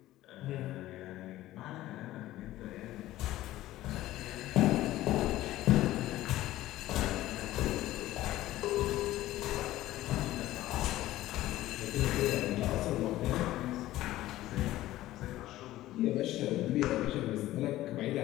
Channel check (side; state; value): right; quieter; 15.5 dB